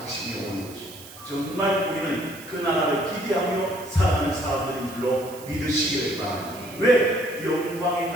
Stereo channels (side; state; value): right; noise; hiss, 17 dB below the sound